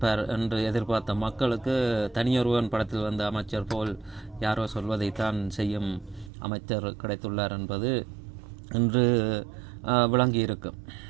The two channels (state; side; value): drops out; left; at 6.3 s